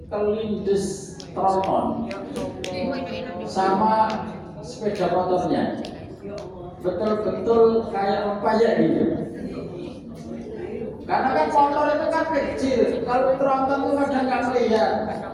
kelindes tronton sama sepeda motornya, betul-betul kayak rempayek gitu. Karena kan motor itu kan kecil, kalau tronton itu kadang nggak melihat,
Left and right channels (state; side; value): identical; both; correlation 1.00